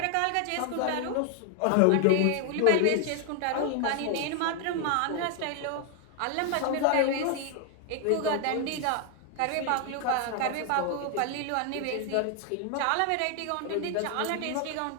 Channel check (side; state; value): both; different; correlation 0.00